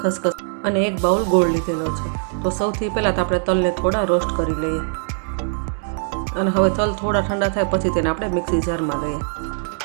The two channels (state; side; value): silent; left; digital silence